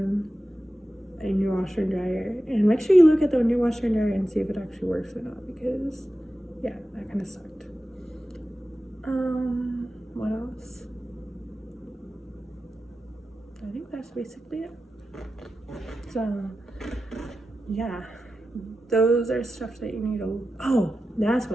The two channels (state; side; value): normal; both; correlation 0.93